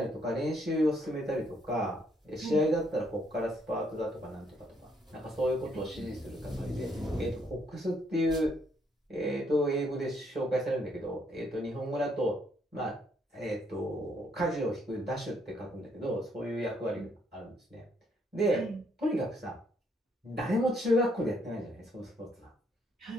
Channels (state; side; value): normal; both; correlation 0.70